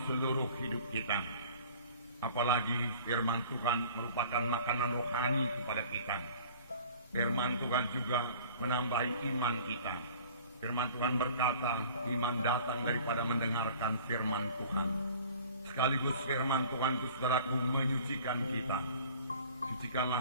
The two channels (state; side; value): inverted; both; correlation -0.48